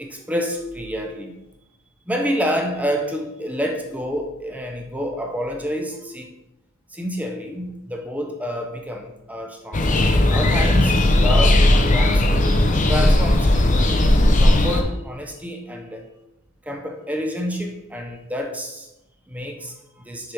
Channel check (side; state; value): both; normal; correlation 0.82